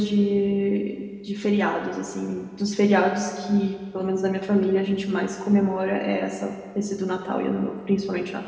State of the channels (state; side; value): identical; both; correlation 1.00